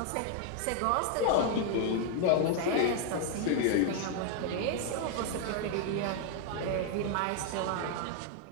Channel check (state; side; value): different; both; correlation 0.00